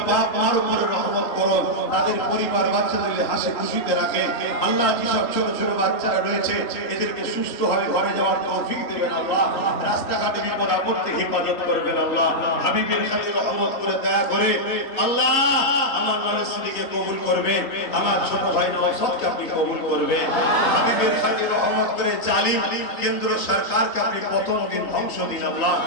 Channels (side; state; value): right; late; 3.3 ms